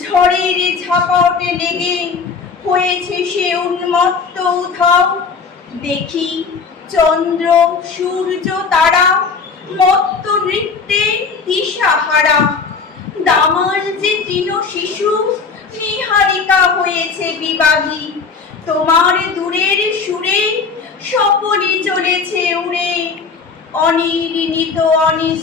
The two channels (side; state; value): right; quieter; 5.1 dB